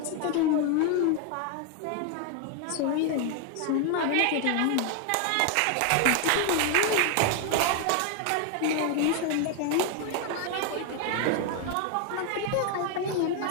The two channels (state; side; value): different; both; correlation 0.01